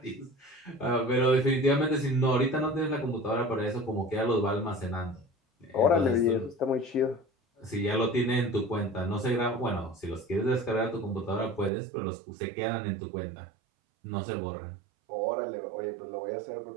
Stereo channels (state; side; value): drops out; left; at 11.7 s